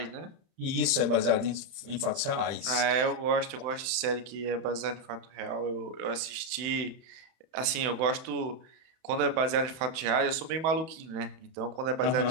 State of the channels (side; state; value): left; late; 31 ms